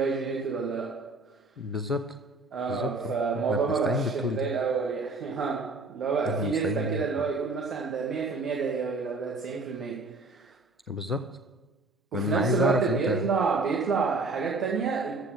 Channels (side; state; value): left; quieter; 3.2 dB